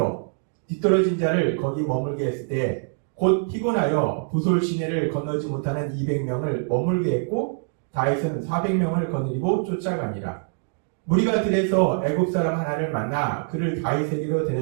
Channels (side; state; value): left; silent; 60 dB below the other